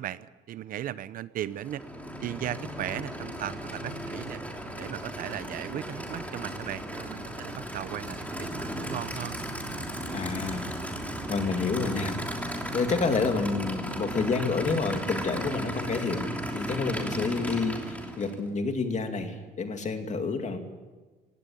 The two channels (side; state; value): both; normal; correlation 0.52